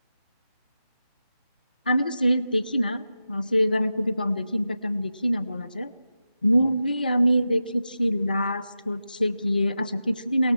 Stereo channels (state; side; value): inverted; both; correlation -0.92